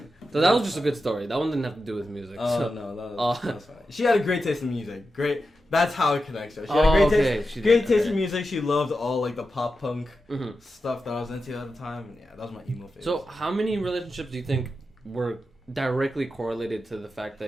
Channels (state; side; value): normal; both; correlation 0.90